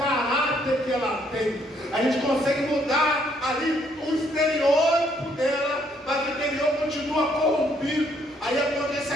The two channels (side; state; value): both; normal; correlation 0.69